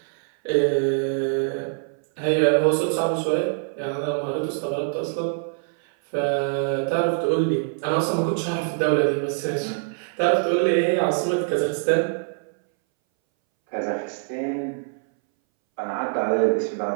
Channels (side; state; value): left; silent; 61 dB below the other